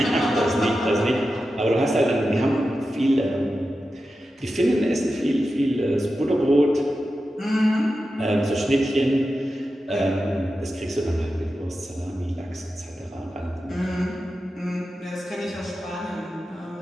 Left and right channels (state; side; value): normal; both; correlation 0.91